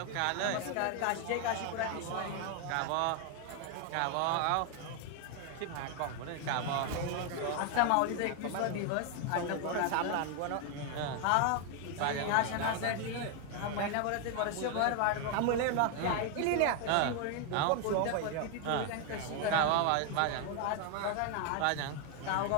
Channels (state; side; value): different; both; correlation 0.01